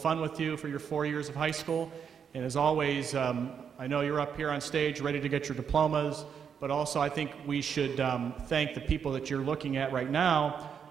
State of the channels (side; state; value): left; quieter; 7.3 dB